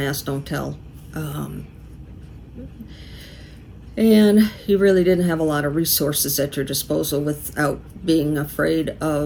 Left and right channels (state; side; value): identical; both; correlation 1.00